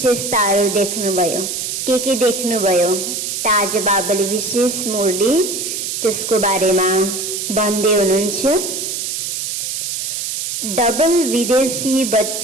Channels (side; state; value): right; noise; hiss, 3 dB below the sound